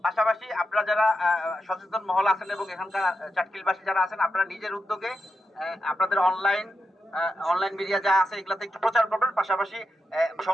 পাশাপাশি আপনারা যারা সচেতন মহল আছেন এবং এখানকার চাটকিলবাসী যারা আছেন, আপনারা নিজের উদ্যোগে আপনাদের অনলাইন মিডিয়া যা আছে এগুলাতে একটু প্রচার করবেন। পাশাপাশি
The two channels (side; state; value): both; normal; correlation 0.87